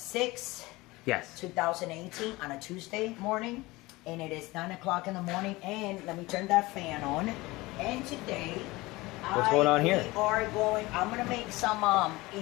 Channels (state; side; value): quieter; right; 21.2 dB